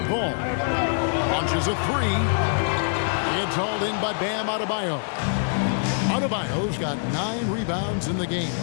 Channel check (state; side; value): silent; right; digital silence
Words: Ball. Launches a 3. It's hauled in by Bam Adebayo. Adebayo's got 9 rebounds in the game.